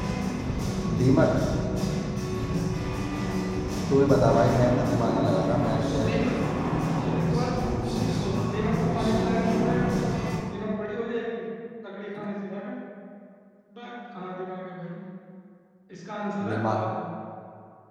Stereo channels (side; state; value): both; identical; correlation 1.00